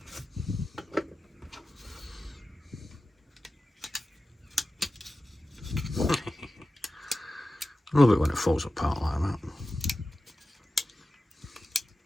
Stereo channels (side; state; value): both; normal; correlation 0.94